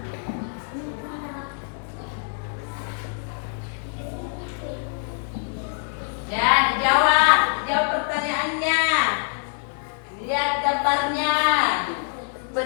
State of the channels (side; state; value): right; silent; digital silence